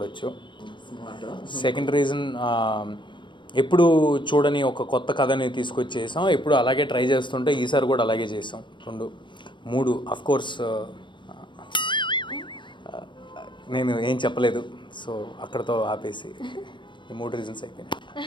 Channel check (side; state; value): right; late; 0.23 ms